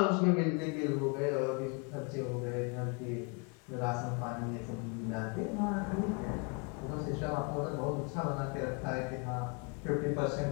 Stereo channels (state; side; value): quieter; right; 33.2 dB